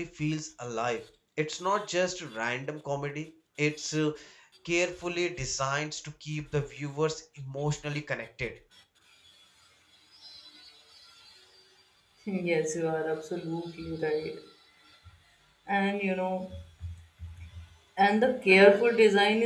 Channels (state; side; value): identical; both; correlation 1.00